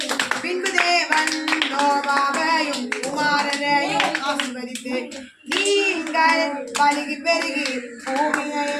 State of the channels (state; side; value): identical; both; correlation 1.00